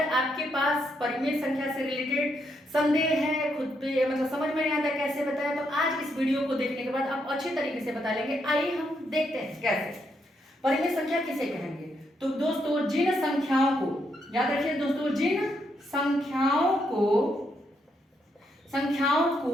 आपके पास परिमेय संख्या से रिलेटेड संदेह है, खुद पे मतलब समझ में नहीं आता कैसे बताएं, तो आज इस वीडियो को देखने के बाद आप अच्छे तरीके से बता लेंगे। आइए हम देखते हैं कैसे परिमेय संख्या किसे कहेंगे। तो दोस्तों जिन संख्याओं को याद रखिए दोस्तों, जिन संख्याओं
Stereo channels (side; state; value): both; normal; correlation 0.78